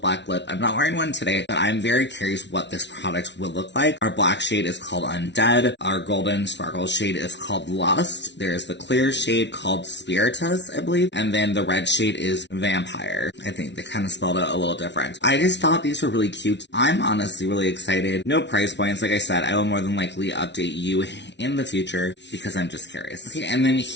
lip. I'm not wearing one today, but I'm very curious what this product will look like. Our black shade is called Undead. Our golden sparkle shade is called Lust. There's the clear shade called Spiritus, I believe, and then the red shade is Vampire. I think they kind of spelled it a little different. I just thought these were really cute. I'm honestly really excited. No price points. Like I said, I will more than likely update you in the future because I'm just curious. Okay, and then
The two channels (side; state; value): right; late; 0.51 ms